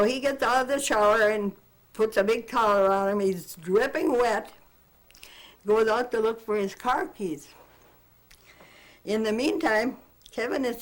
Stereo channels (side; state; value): both; identical; correlation 1.00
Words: he gets out of the shower and puts a big towel around him. He's dripping wet. Goes out to look for his car keys. In the meantime, Kevin is